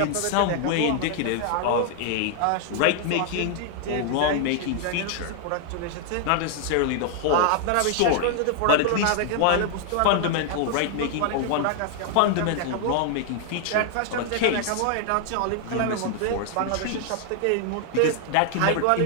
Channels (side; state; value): both; different; correlation 0.00